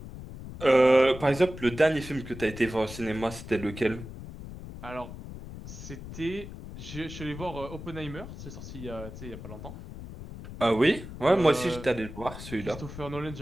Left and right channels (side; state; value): left; noise; rumble, 12 dB below the sound